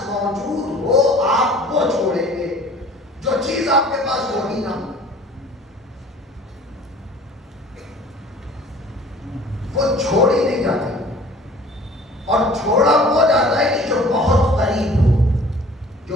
موجود ہو آپ وہ چھوڑیں گے، جو چیز آپ کے پاس ہوئی نہ وہ چھوڑی نہیں جاتی۔ اور چھوڑا وہ جاتا ہے کہ جو بہت قریب ہو،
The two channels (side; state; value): both; normal; correlation 0.49